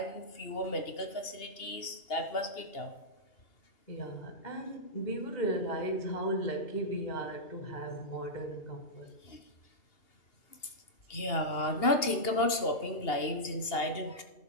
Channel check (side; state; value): right; late; 2.8 ms